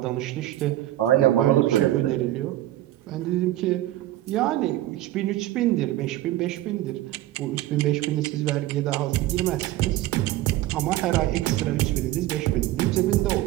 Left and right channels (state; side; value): quieter; left; 14.9 dB